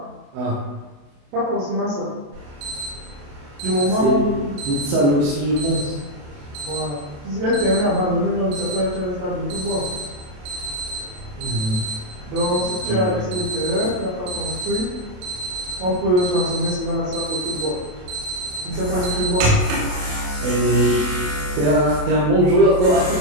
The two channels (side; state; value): left; late; 28 ms